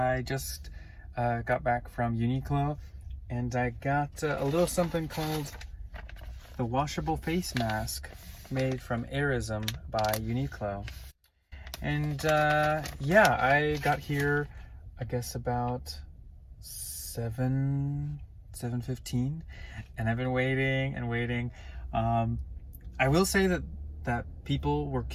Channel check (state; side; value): identical; both; correlation 1.00